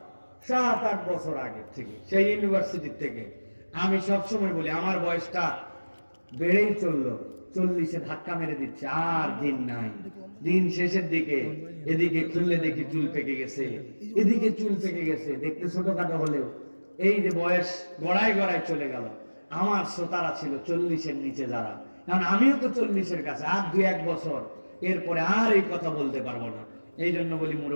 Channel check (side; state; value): both; inverted; correlation -1.00